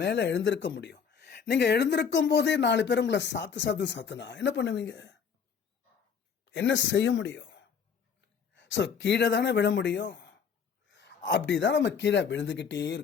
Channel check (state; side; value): quieter; right; 6.7 dB